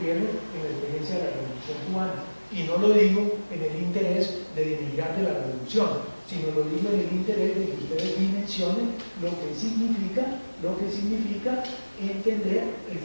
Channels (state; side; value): inverted; both; correlation -1.00